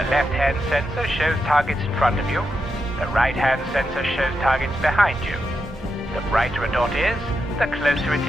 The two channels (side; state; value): both; normal; correlation 0.86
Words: left-hand sensor shows targets in front of you. The right-hand sensor shows targets behind you. The brighter a dot is, the closer it